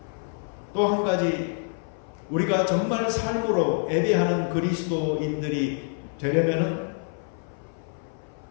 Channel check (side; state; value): right; silent; 57 dB below the other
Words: 또 한 가지, 우리가 정말 삶으로 예배하는 그리스도인들이 되려면